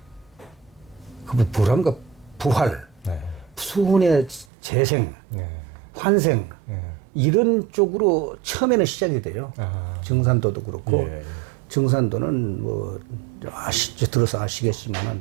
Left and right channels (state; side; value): drops out; left; at 4.5 s